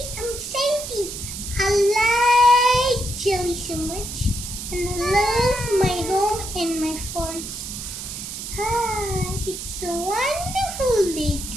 I'm Santy. I like jelly so much, and I love my home and my forest. It's a wonderful day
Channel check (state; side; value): noise; right; hiss, 8 dB below the sound